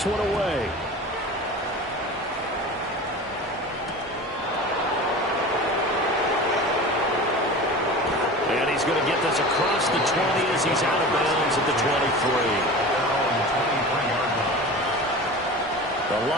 one away. And he's going to get this across the 20 as he's out of bounds at the 23. The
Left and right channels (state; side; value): normal; both; correlation 0.34